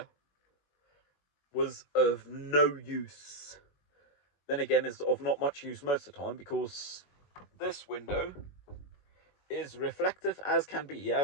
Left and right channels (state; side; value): late; right; 21 ms